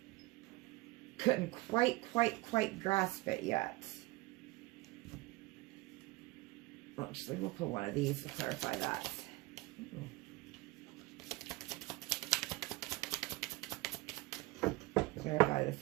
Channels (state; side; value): quieter; left; 21.1 dB